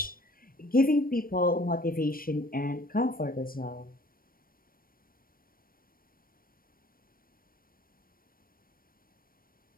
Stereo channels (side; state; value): right; late; 0.42 ms